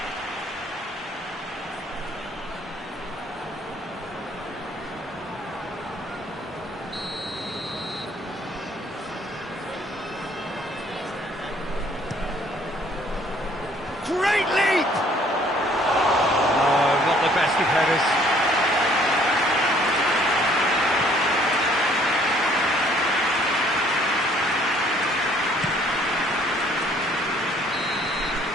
Great leap! Oh, not the best of headers.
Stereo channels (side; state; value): both; normal; correlation 0.60